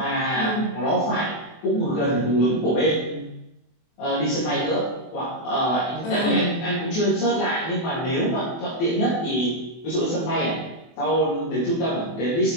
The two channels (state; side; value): late; right; 24 ms